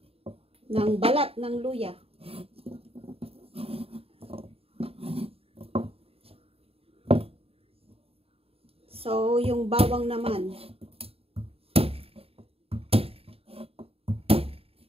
ng balat ng luya. So, yung bawang naman.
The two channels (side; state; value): left; late; 0.28 ms